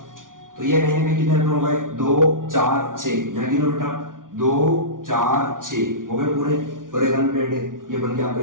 तो ये कहीं ना कहीं कितने इलेक्ट्रॉन हो गए? 2 4 6, यहाँ गिनो बेटा, 2 4 6 हो गए पूरे, और एक अनपेयर्ड है, ये बन गया आपका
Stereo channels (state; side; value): late; left; 0.89 ms